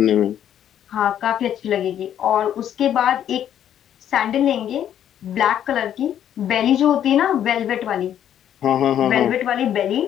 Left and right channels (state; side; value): quieter; right; 10.3 dB